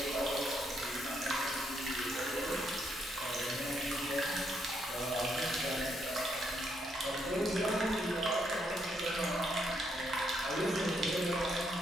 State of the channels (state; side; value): normal; both; correlation 0.75